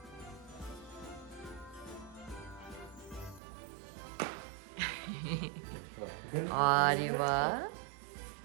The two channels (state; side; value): drops out; left; at 3.4 s